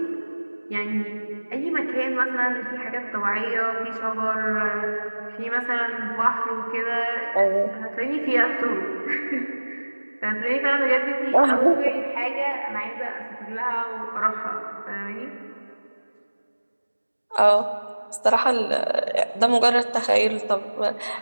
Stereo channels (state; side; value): inverted; both; correlation -1.00